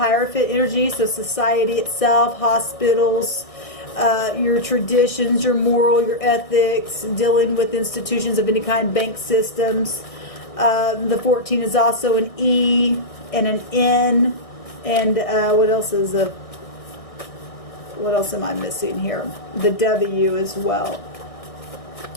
energy, so society itself, hospitals, your traditions, your moral, your ethics, dealing with institutions of any kind, bank systems. The 14 is also an E and an N, and what else am I missing here? The W as well.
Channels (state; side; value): late; right; 1.6 ms